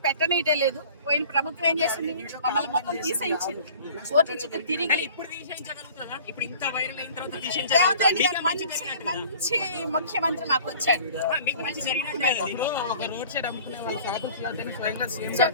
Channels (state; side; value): inverted; both; correlation -0.47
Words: పెట్టనీయటే లేదు. పోయిన ప్రభుత్వం ఏం చేసింది? మమ్మల్ని మొత్తం తీసేయించింది. కోర్టు చుట్టూ తిరిగి రేవంత్ రెడ్డి గారు మంచి ముఖ్యమంత్రి మాకు వచ్చాడు.